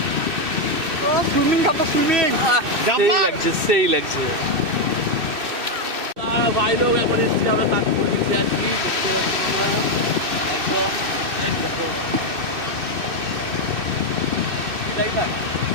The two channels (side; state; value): left; late; 2.6 ms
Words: ও সুইমিং খাবো, সুইমিং সেই লাগছে, সেই লাগছে ভাই। লোক এখন এসেছি আমরা, তাজপুর বিচে আছি, দেখতে পাচ্ছি আমরা একদম। দেখো